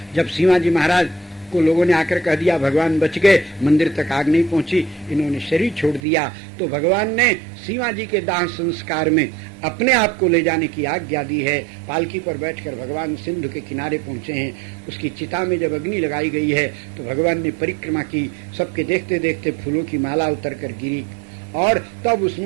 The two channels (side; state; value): left; drops out; at 6.0 s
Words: जब शिवाजी महाराज को लोगों ने आकर कह दिया भगवान बच गए, मंदिर तक आग नहीं पहुंची, इन्होंने शरीर छोड़ दिया, तो भगवान ने शिवाजी के दाह संस्कार में अपने आप को ले जाने की आज्ञा दी है। पालकी पर बैठकर भगवान सिंधु के किनारे पहुंचे हैं। उसकी चिता में जब अग्नि लगाई गई है तो भगवान ने परिक्रमा की, सबके देखते देखते फूलों की माला उतर कर गिरी और तब